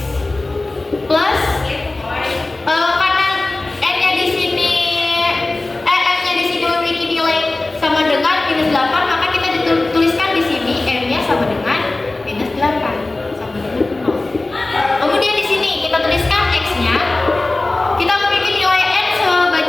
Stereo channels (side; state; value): right; quieter; 3.0 dB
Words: plus karena N-nya di sini M-nya di sini memiliki nilai sama dengan minus 8, maka kita tuliskan di sini M-nya sama dengan minus 8 sama dengan 0. Kemudian di sini kita tuliskan X-nya, kita memiliki nilai N